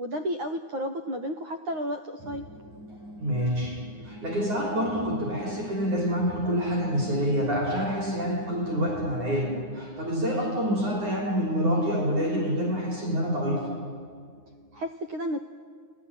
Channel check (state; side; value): late; left; 9.6 ms